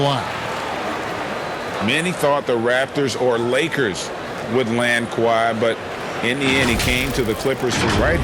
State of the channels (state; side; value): identical; both; correlation 1.00